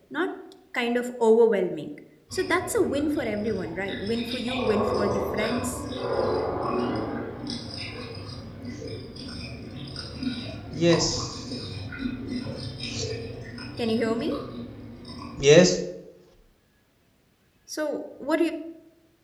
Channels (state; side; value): identical; both; correlation 1.00